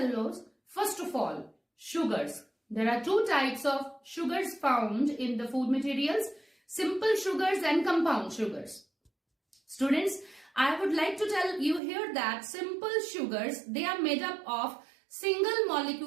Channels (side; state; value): left; drops out; at 11.8 s